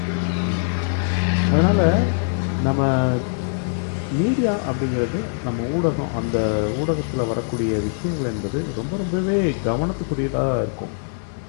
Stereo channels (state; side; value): silent; right; 64 dB below the other